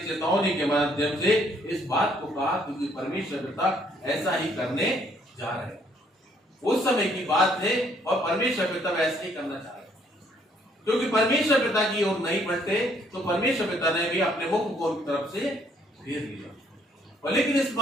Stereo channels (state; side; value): normal; both; correlation 0.66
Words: के माध्यम से इस बात को कहा, क्योंकि परमेश्वर पिता ऐसा ही करने जा रहे हैं। उस समय की बात है और परमेश्वर पिता वैसा ही करना चाह रहे हैं, क्योंकि परमेश्वर पिता की ओर नहीं बढ़ते तो परमेश्वर पिता ने भी अपने मुख को उनकी तरफ से फेर लिया। और लेकिन इस